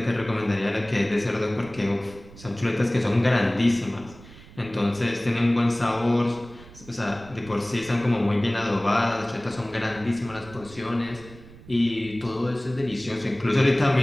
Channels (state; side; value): noise; right; rumble, 20 dB below the sound